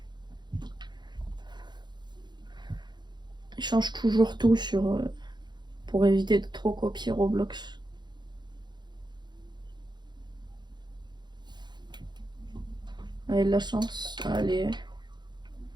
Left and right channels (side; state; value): left; late; 0.21 ms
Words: Il change toujours tout sur... pour éviter de trop copier Roblox. Allez, de la chance. Allez.